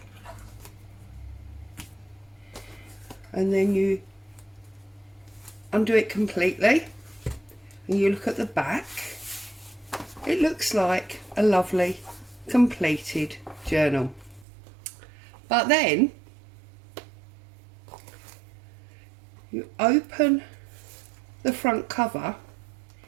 and then you undo it completely and you look at the back, it looks like a lovely completed journal. But then you open the front cover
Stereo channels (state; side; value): drops out; left; at 14.5 s